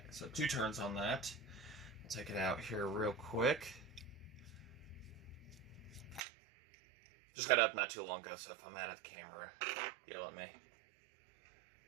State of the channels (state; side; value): drops out; left; at 6.2 s